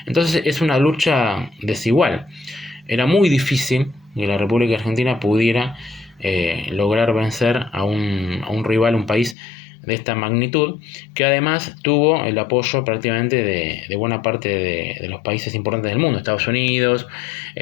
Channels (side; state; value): right; drops out; at 9.3 s